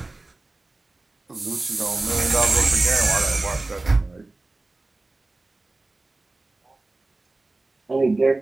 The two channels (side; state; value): left; quieter; 3.2 dB